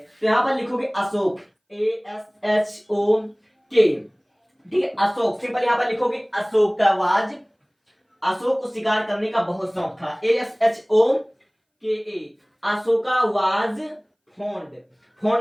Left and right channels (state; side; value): identical; both; correlation 1.00